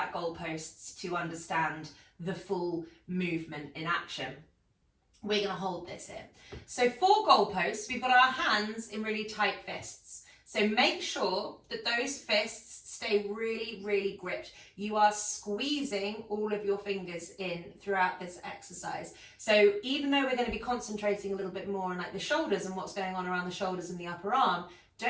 goalposts to understand the full movement in action. We're going to hold this here. So for goalposts, we've got our hands in really tight fists. So make sure that those fists stay really, really gripped. You are squeezing all of your fingers in throughout this exercise. So even though we're going to be concentrating a little bit more on like the shoulders and what's going on around the shoulders and the upper arm,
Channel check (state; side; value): identical; both; correlation 1.00